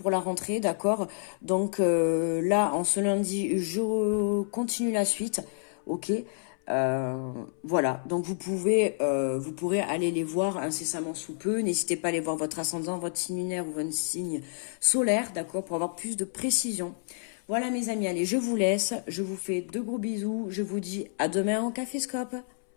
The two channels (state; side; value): silent; right; 59 dB below the other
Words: la rentrée, d'accord. Donc là, en ce lundi, je continue la suite, ok. Voilà, donc vous pourrez aller les voir incessamment sous peu. N'hésitez pas à aller voir votre ascendant, votre signe lunaire ou votre signe solaire, d'accord, pour avoir plus de précision. Voilà mes amis, allez, je vous laisse, je vous fais de gros bisous, je vous dis à demain en Caféscope.